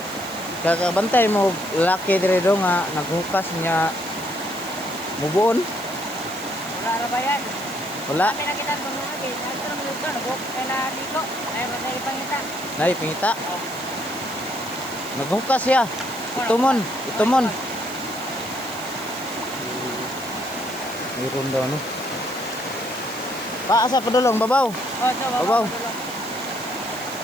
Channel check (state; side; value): noise; right; hiss, 16 dB below the sound